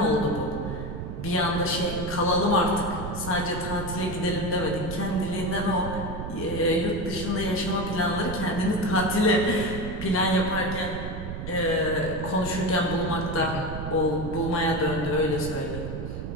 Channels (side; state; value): right; noise; rumble, 6 dB below the sound